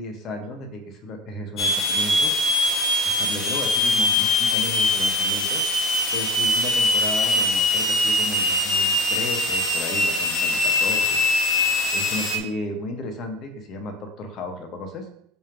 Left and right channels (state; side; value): normal; both; correlation 0.33